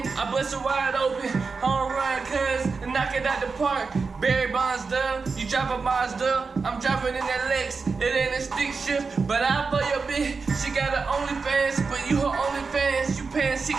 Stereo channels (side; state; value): left; quieter; 4.6 dB